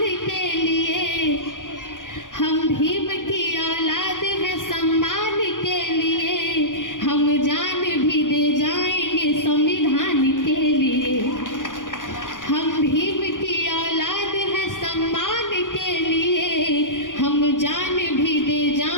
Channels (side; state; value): right; late; 0.88 ms